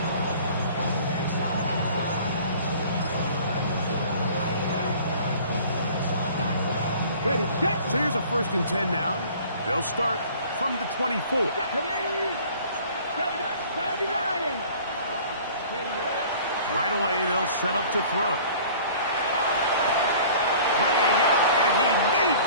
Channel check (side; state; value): both; inverted; correlation -0.48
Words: Ready, set. So here's a 1st and 10 now. They'll start from the 24. 79. Right away, they'll set up to throw. Laying out, and he made